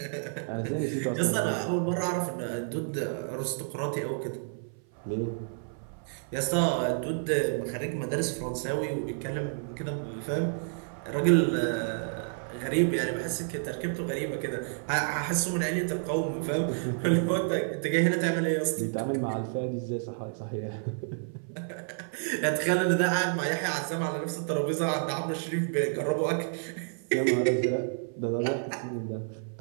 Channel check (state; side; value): silent; left; 57 dB below the other